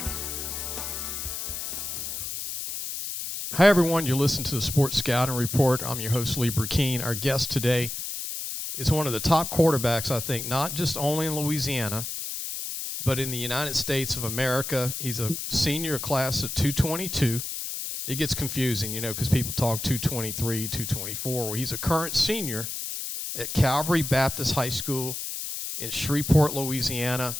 Hi, everyone. You're listening to the Sports Scouting Report. I'm your host, Lee Brecheen. Our guest today is one of the top quarterbacks, I think, not just only in Louisiana, but in the United States of America. He's a senior class of 222. It gets confusing, because people talk 223, 224. Well, he's a current senior at Calvary Baptist High School in Shreveport, Louisiana.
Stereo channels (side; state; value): left; noise; hiss, 5 dB below the sound